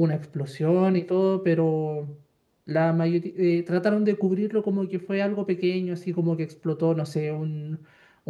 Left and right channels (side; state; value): both; identical; correlation 1.00